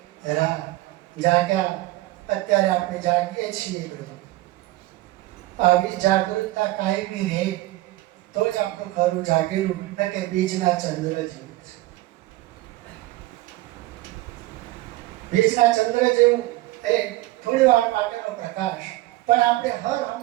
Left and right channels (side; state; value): left; quieter; 17.9 dB